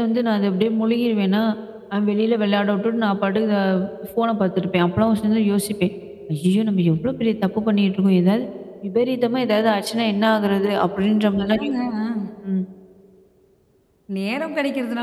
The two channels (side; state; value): both; identical; correlation 1.00